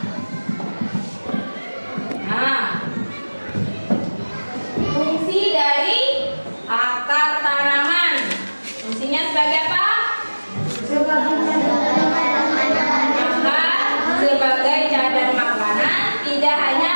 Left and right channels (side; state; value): both; inverted; correlation -1.00